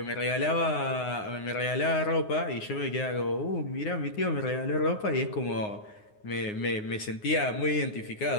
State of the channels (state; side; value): late; right; 9.6 ms